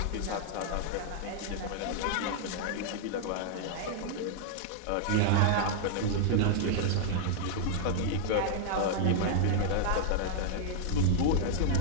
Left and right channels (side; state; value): both; different; correlation 0.00